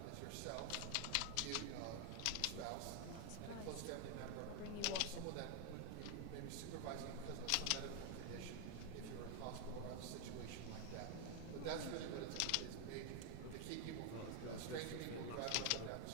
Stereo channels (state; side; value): different; both; correlation 0.00